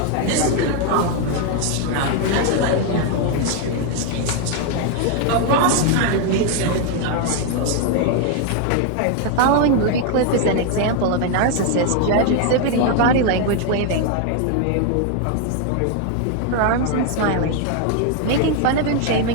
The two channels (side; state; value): both; different; correlation 0.01